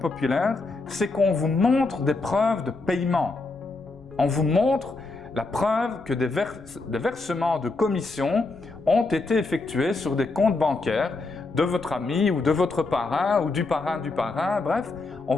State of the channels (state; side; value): quieter; right; 3.5 dB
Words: c'est qu'on vous montre des preuves de paiement. On vous montre la preuve que des versements de commission ont été effectués sur des comptes bancaires de votre ami ou de votre parrain ou du parrain, bref, on